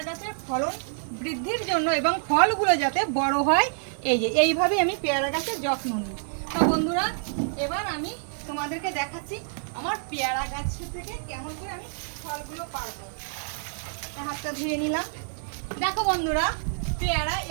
গাছের ফলন বৃদ্ধির জন্য এবং ফলগুলো যাতে বড় হয়, এই যে এইভাবে আমি পেয়ারা গাছের যত্ন নিই। তো বন্ধুরা, এবার আমি তোমাদেরকে দেখাচ্ছি আমার পেয়ারা গাছ থেকে কেমন করে আমি ফলগুলো পারবো। হাতটা ধুয়ে নিলাম। দেখো বন্ধুরা, পেয়ারা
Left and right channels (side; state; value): left; silent; digital silence